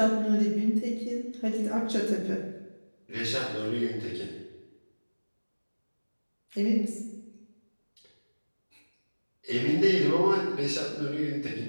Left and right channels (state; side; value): inverted; both; correlation -1.00